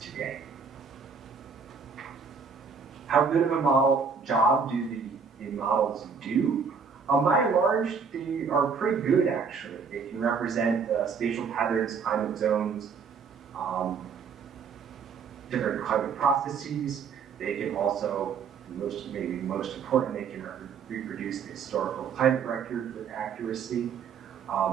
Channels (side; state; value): left; quieter; 5.8 dB